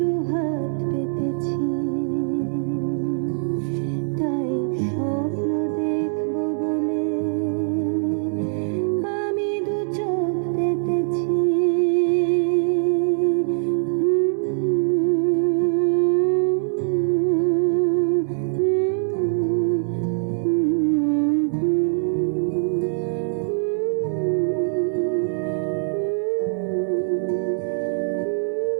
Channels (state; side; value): silent; left; digital silence